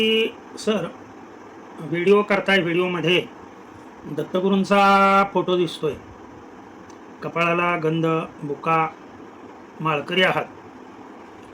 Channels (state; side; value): identical; both; correlation 1.00